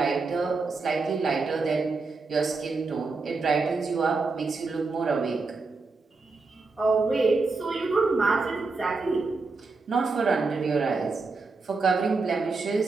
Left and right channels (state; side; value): quieter; left; 4.0 dB